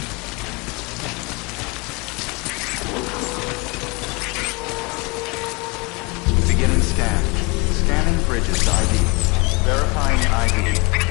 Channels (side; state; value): right; quieter; 27.9 dB